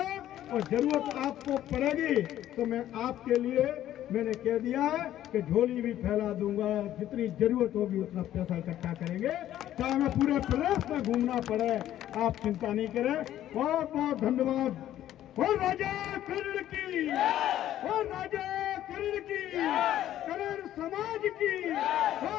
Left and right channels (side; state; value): right; quieter; 12.4 dB